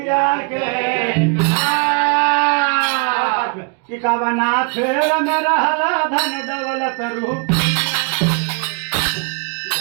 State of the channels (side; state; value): left; quieter; 35.2 dB